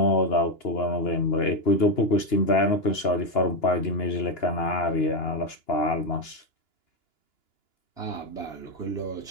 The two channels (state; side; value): late; right; 2.9 ms